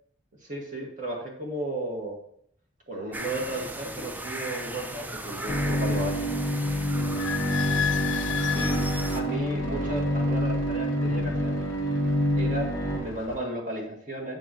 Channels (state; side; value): normal; both; correlation 0.57